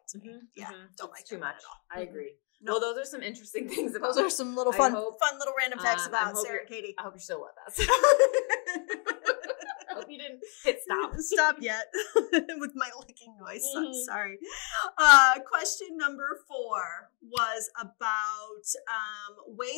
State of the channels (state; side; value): quieter; right; 38.0 dB